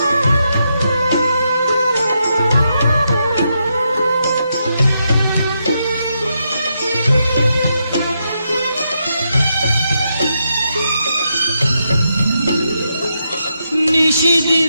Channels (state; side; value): inverted; both; correlation -0.82